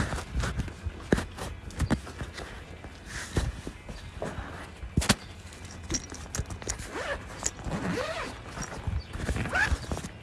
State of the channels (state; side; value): identical; both; correlation 1.00